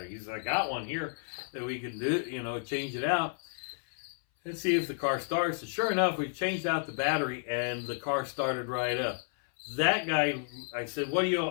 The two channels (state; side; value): silent; right; 57 dB below the other